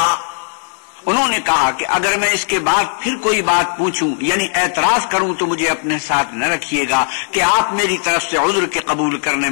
انہوں نے کہا کہ اگر میں اس کے بعد پھر کوئی بات پوچھوں یعنی اعتراض کروں تو مجھے اپنے ساتھ نہ رکھیے گا کہ آپ میری طرف سے عذر کے قبول کرنے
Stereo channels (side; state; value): right; silent; 63 dB below the other